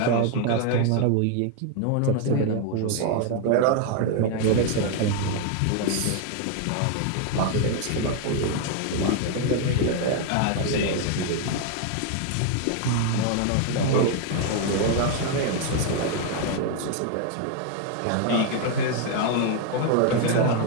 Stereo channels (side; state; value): both; different; correlation 0.00